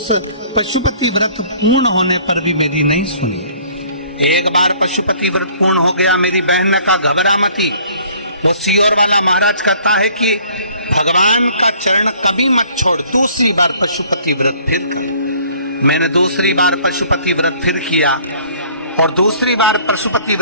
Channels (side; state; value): both; inverted; correlation -0.56